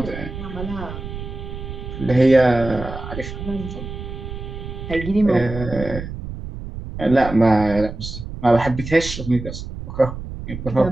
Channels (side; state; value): right; noise; rumble, 9 dB below the sound